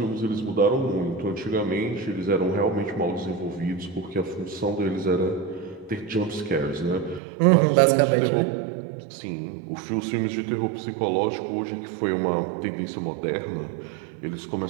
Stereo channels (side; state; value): left; drops out; at 7.2 s